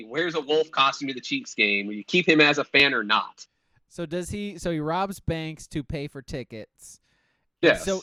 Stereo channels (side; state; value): both; identical; correlation 1.00